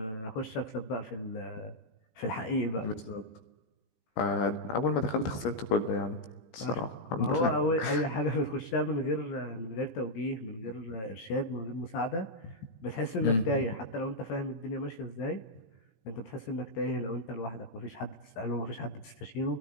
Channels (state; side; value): late; right; 18 ms